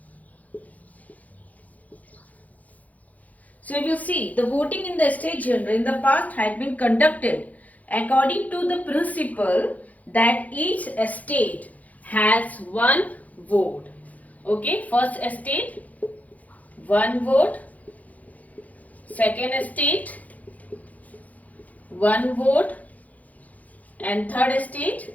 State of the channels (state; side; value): late; right; 0.076 ms